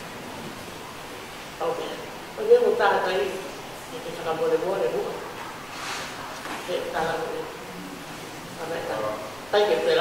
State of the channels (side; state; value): right; noise; rumble, 24 dB below the sound